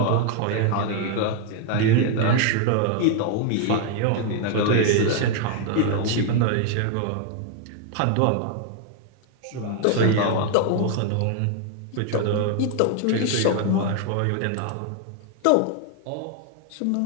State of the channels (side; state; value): both; different; correlation 0.00